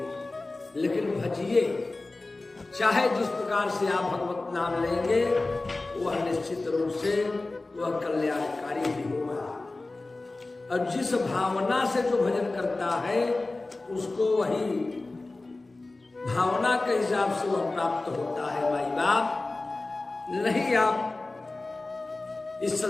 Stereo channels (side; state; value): right; quieter; 3.2 dB